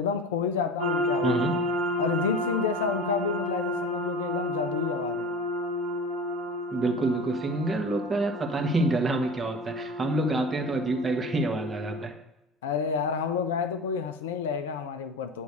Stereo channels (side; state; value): both; normal; correlation 0.34